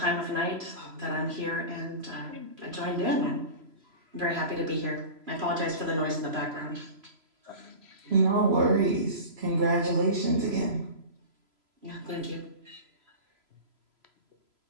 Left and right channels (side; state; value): left; late; 3.0 ms